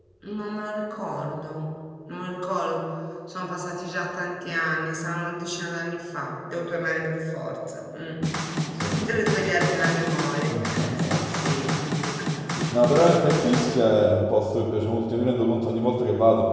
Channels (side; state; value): both; identical; correlation 1.00